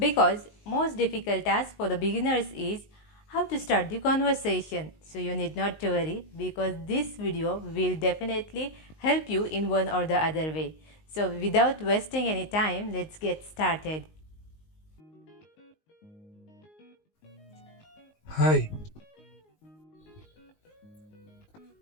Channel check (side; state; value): right; late; 19 ms